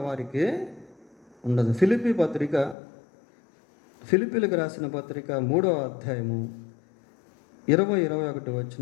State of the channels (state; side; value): drops out; right; at 2.8 s